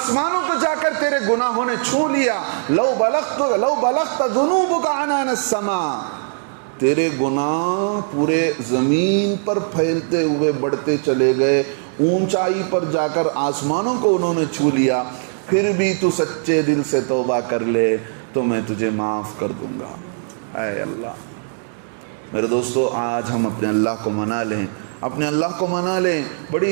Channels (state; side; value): silent; left; digital silence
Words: کو جا کر تیرے گناہوں نے چھو لیا۔ لو بلغت ذنوبک عنان السماء، تیرے گناہ پورے زمین پر پھیلتے ہوئے بڑھتے چلے گئے، اونچائی پر جا کر آسمانوں کو انہوں نے چھو لیا، پھر بھی تو سچے دل سے توبہ کر لے تو میں تجھے معاف کر دوں گا۔ اے اللہ، میرے دوستو آج ہم اپنے اللہ کو منا لیں، اپنے اللہ کو منا لیں.